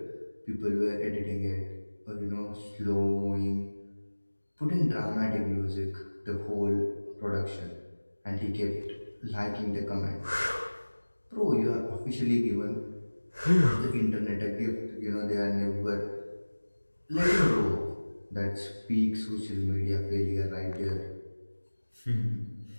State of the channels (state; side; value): inverted; both; correlation -1.00